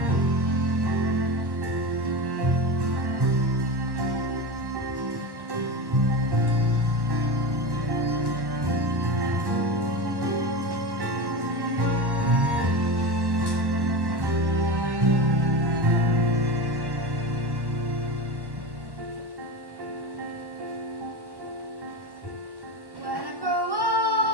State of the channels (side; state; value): left; late; 1.1 ms